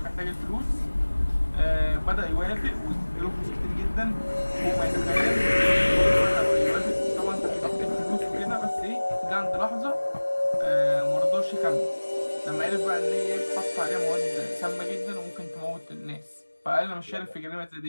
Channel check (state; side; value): inverted; both; correlation -1.00